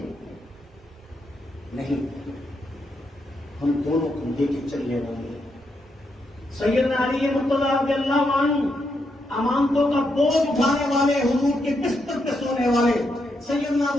نہیں، ہم دونوں کو لے کے چلنے والے ہیں. سیدنا علی مرتضیٰ رضی اللہ عنہ امانتوں کا بوجھ اٹھانے والے، حضور کے بستر پہ سونے والے سیدنا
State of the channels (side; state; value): both; normal; correlation 0.80